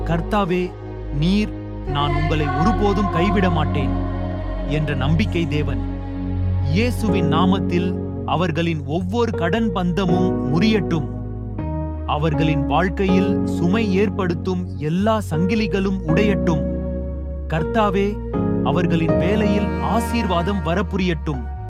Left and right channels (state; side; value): identical; both; correlation 1.00